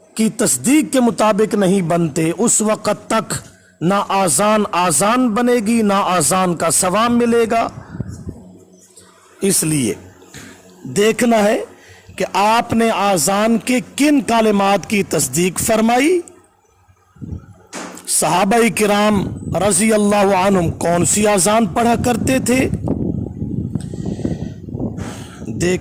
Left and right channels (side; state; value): both; identical; correlation 1.00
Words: की तस्दीक के मुताबिक नहीं बनते, उस वक़्त तक ना आज़ान बनेगी, ना आज़ान का सवाब मिलेगा। इसलिए देखना है कि आपने आज़ान के किन कालिमात की तस्दीक फरमाई, सहाबाई किराम रज़ी अल्लाह अन्हुम कौन सी आज़ान पढ़ा करते थे।